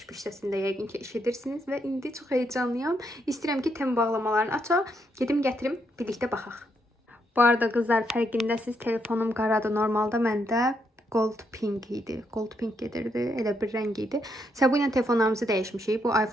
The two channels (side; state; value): both; normal; correlation 0.77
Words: səsində yəqin ki, eşidirsiniz. Və indi çox heyecanlıyam. İstəyirəm ki, tem bağlamalarını açaq. Gedim gətirim, birlikdə baxaq. Bu arada qızlar, fərqindəsiz, telefonum qaradır. Normalda məndə gold pink idi. Gold pink gedirdi. Elə bir rəng idi. Bu ilə telefonlarımızı dəyişmişik. Bu